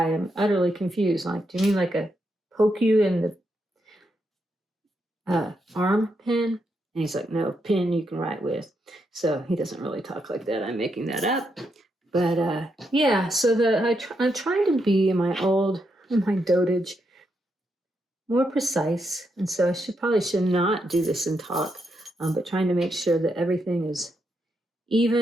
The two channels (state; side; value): normal; both; correlation 0.81